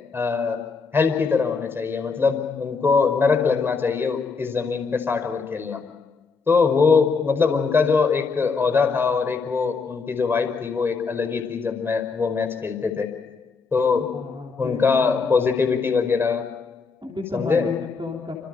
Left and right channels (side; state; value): right; quieter; 4.9 dB